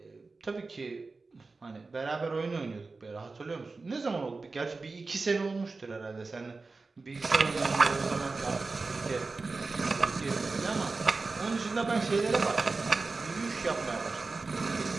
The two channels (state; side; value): quieter; left; 3.9 dB